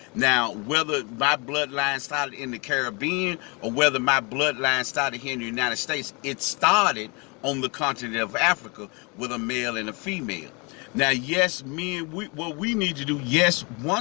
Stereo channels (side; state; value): right; quieter; 30.0 dB